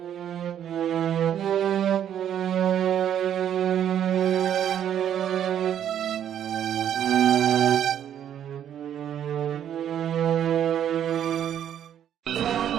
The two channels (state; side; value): quieter; left; 9.9 dB